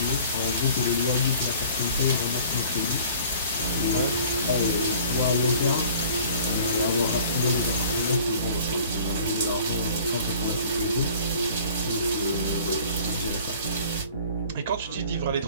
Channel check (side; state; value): both; inverted; correlation -0.49